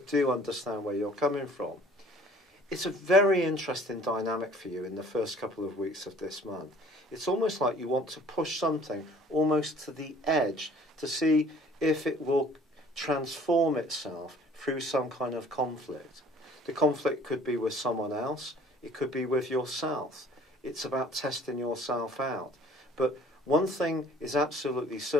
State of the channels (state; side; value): normal; both; correlation 0.53